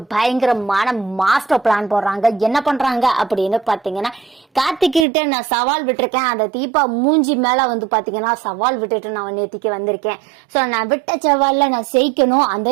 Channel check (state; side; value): drops out; left; at 5.1 s